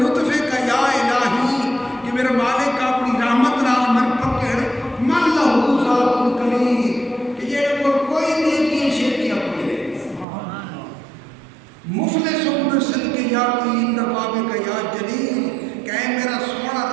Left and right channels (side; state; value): left; drops out; at 10.2 s